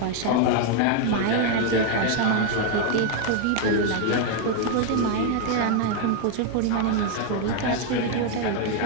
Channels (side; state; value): both; different; correlation 0.01